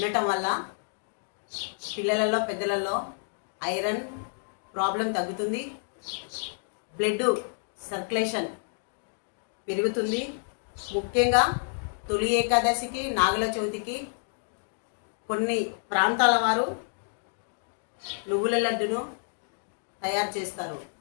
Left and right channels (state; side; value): silent; right; digital silence